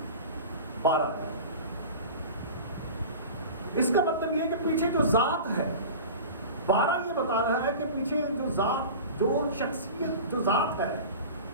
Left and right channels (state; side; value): inverted; both; correlation -0.35